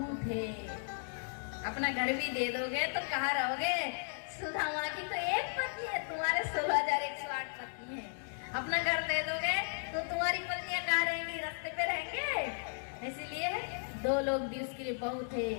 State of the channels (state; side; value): silent; right; digital silence